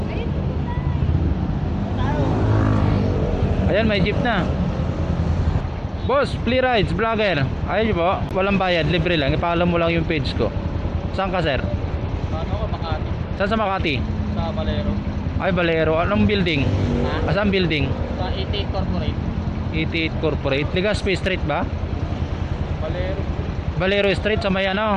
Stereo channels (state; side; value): identical; both; correlation 1.00